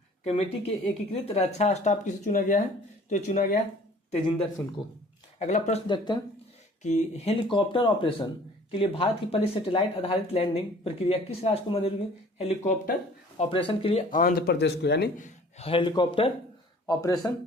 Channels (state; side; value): normal; both; correlation 0.51